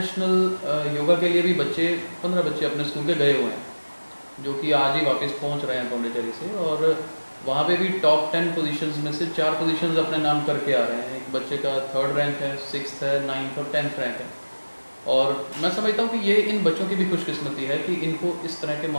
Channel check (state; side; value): inverted; both; correlation -1.00